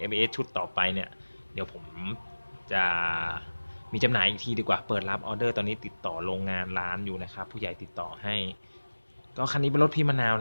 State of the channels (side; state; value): both; inverted; correlation -1.00